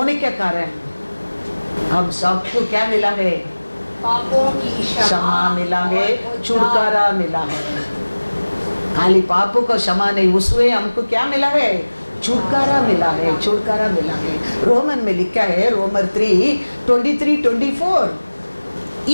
के कारण हम सबको क्या मिला है? पापों की क्षमा मिला है, छुटकारा मिला है। खाली पापों को क्षमा नहीं, उसमें हमको क्या मिला है? छुटकारा मिला है, छुटकारा मिला है। रोमन में लिखा है, रोमर 3:23-24,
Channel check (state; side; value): inverted; both; correlation -1.00